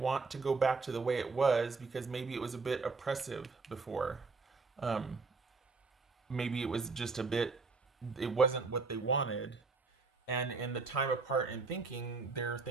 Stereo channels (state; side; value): quieter; left; 4.2 dB